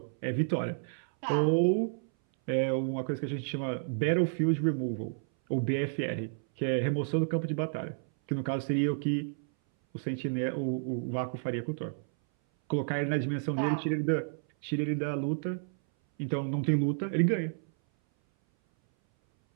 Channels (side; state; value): left; silent; 57 dB below the other